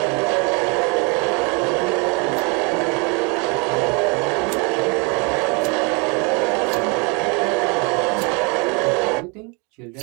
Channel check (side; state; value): left; quieter; 31.6 dB